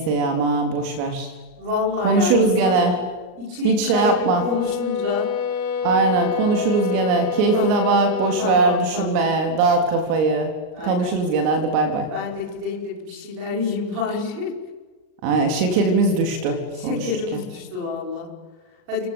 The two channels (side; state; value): left; late; 39 ms